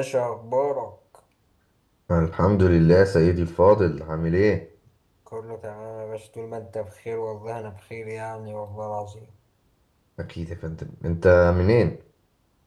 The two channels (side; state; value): both; identical; correlation 1.00